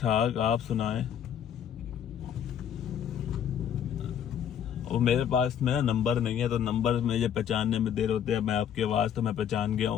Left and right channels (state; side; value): quieter; right; 9.1 dB